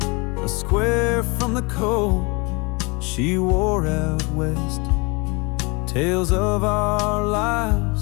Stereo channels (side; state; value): right; quieter; 28.3 dB